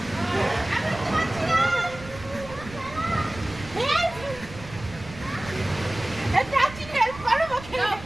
এই প্রাচীন হেল্প করো ওকে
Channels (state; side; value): noise; right; rumble, 15 dB below the sound